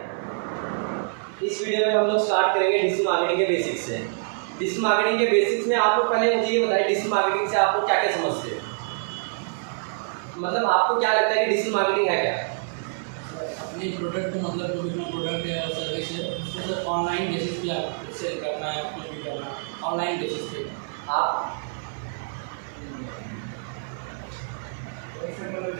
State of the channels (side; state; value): left; silent; 56 dB below the other